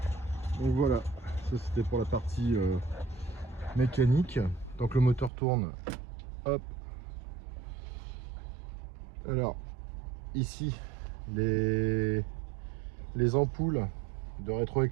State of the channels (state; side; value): drops out; left; at 5.3 s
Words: c'était pour la partie mécanique. Tant que le moteur tourne, hop. Alors, ici, les ampoules de